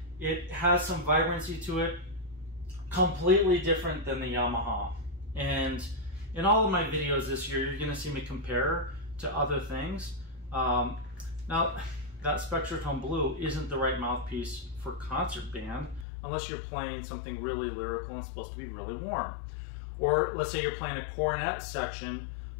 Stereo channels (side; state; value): right; drops out; at 16.1 s